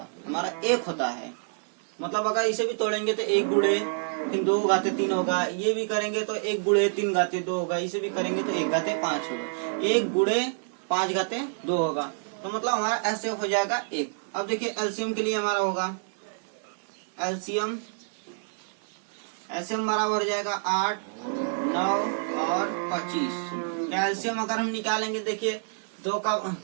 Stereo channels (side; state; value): left; silent; digital silence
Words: हमारा 1 होता है। मतलब अगर इसे भी तोड़ेंगे तो 1 गुणे फिर 2 घाते 3 होगा, ये भी करेंगे तो 1 गुणे 3 घाते 2 होगा, इसे भी करेंगे तो 1 घाते 5 होगा, 1 गुणे 5 घाते 2 होगा। तो मतलब हमारा एचसीएफ हो जाएगा 1। अब देखिए एलसीएम के लिए हमारा होगा, एलसीएम बराबर हो जाएगा 8, 9 और 25। एलसीएम अगर हम निकालेंगे, देखिए 2